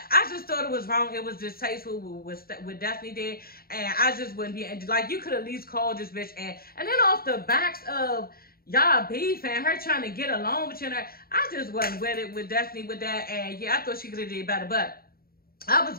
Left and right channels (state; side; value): late; right; 0.43 ms